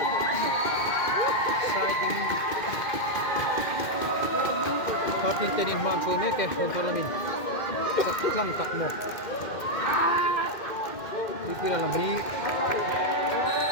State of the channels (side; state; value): right; late; 2.1 ms